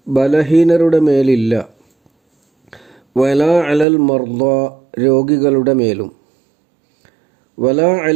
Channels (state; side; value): drops out; left; at 3.9 s